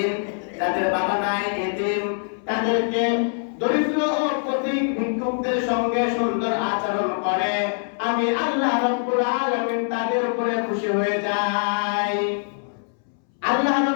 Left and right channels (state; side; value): silent; right; 63 dB below the other